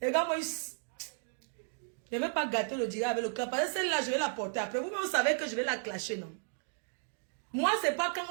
Les gars, moi, je ne vais pas gâter le dirait avec le cœur. Parce que celle-là, je vais la porter après. Vous-même, vous savez que je vais la clasher, non? Moi, c'est pas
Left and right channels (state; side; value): silent; left; digital silence